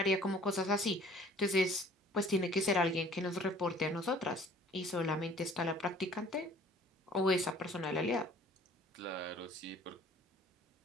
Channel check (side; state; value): both; normal; correlation 0.53